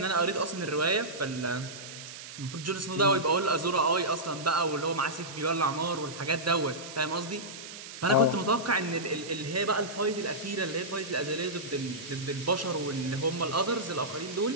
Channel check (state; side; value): noise; right; hiss, 12 dB below the sound